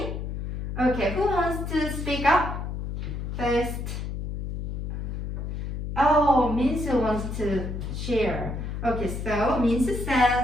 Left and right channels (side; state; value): left; noise; hum, 4 dB below the sound